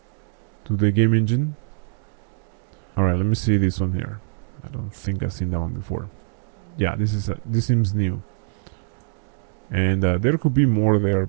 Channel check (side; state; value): left; silent; digital silence